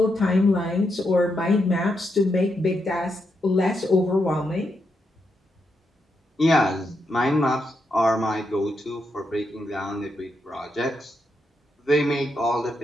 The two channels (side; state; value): both; normal; correlation 0.82